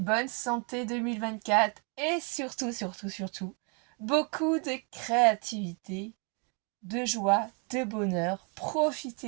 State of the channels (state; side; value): quieter; left; 36.2 dB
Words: santé 2024 et surtout, beaucoup de créativité, de joie, de bonheur.